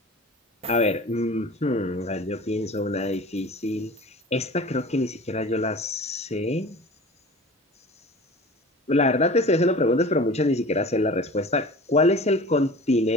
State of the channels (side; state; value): both; normal; correlation 0.39